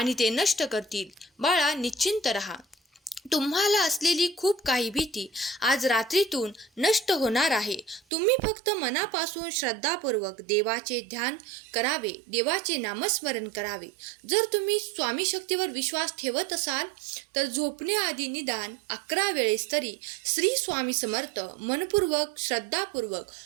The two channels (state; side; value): drops out; left; at 8.0 s